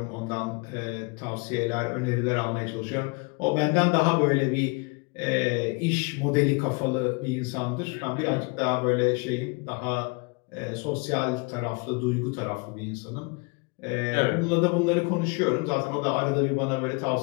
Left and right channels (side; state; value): right; quieter; 30.6 dB